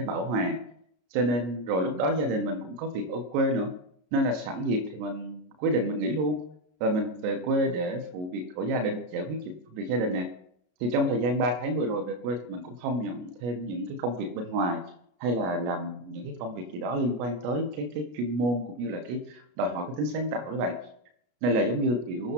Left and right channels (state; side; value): late; left; 33 ms